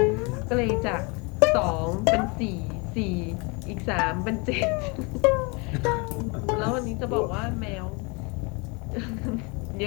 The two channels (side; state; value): right; quieter; 29.7 dB